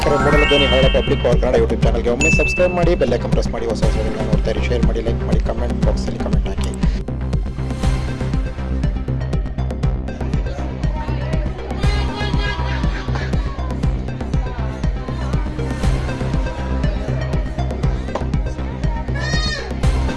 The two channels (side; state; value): both; identical; correlation 1.00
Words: ಮೂಡಲ ಧ್ವನಿ ಹರಳ ಪಬ್ಲಿಕ್ ಪವರ್ ಕನ್ನಡ ಯೂಟ್ಯೂಬ್ ಚಾನಲ್ಗೆ ಒಮ್ಮೆ ಸಬ್ಸ್ಕ್ರೈಬ್ ಮಾಡಿ, ಬೆಲ್ ಐಕಾನ್ ಪ್ರೆಸ್ ಮಾಡಿ, ಹೊಸ ವಿಡಿಯೋಗಳನ್ನ ನೋಡ್ತಾ ಇರಿ. ಶೇರ್ ಮಾಡಿ, ಲೈಕ್ ಮಾಡಿ, ಕಮೆಂಟ್ ಬಾಕ್ಸಲ್ಲಿ ಕಮೆಂಟ್ ಹಾಕಿ.